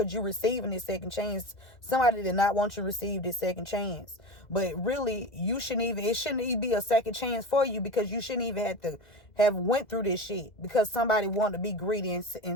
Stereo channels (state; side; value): late; right; 2.2 ms